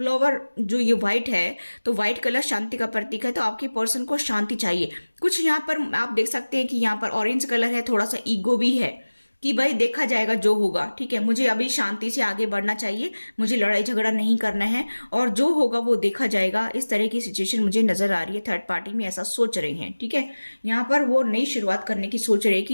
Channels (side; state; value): both; inverted; correlation -1.00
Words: जो ये व्हाइट है, तो व्हाइट कलर शांति का प्रतीक है, तो आपके पर्सन को शांति चाहिए। कुछ यहाँ पर आप देख सकते हैं कि यहाँ पर ऑरेंज कलर है, थोड़ा सा ईगो भी है कि भाई देखा जाएगा जो होगा, ठीक है। मुझे अभी शांति से आगे बढ़ना चाहिए, मुझे लड़ाई झगड़ा नहीं करना है और जो होगा वो देखा जाएगा। इस तरह की सिचुएशन मुझे नजर आ रही है, थर्ड पार्टी में ऐसा सोच रहे हैं, ठीक है। यहाँ पर वो नई शुरुआत करने की सोच रहे हैं